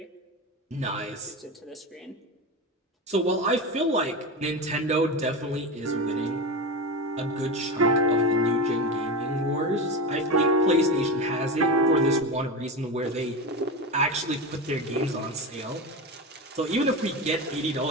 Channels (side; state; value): both; normal; correlation 0.21